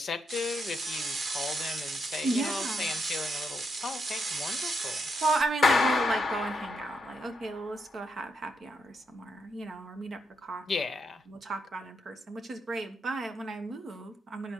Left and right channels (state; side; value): normal; both; correlation 0.79